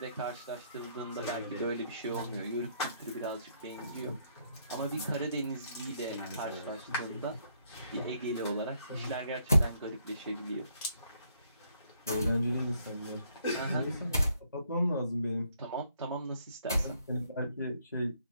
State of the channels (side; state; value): both; inverted; correlation -0.71